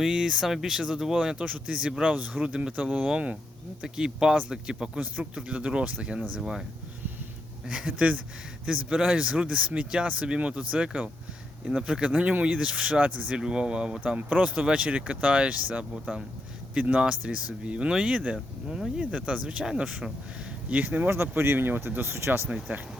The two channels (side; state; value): both; normal; correlation 0.81